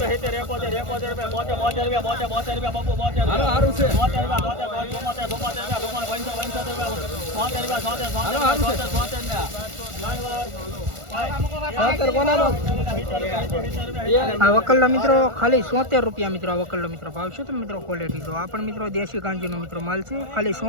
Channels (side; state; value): left; late; 1.4 ms